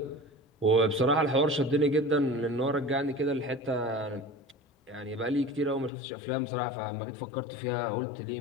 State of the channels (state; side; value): drops out; right; at 5.9 s